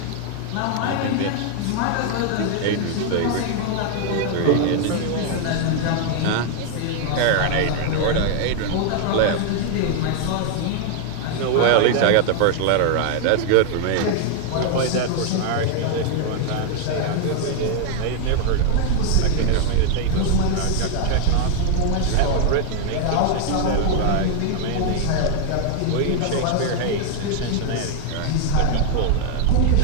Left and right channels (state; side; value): different; both; correlation 0.00